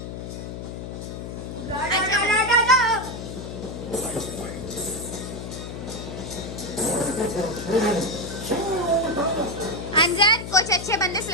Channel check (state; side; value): noise; left; hum, 8 dB below the sound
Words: अंजन कुछ अच्छे बंदे